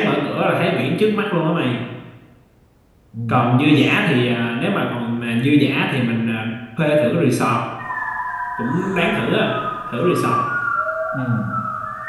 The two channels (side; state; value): both; identical; correlation 1.00